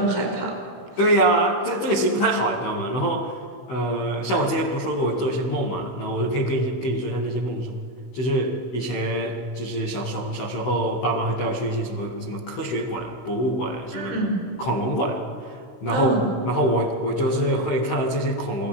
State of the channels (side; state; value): right; late; 16 ms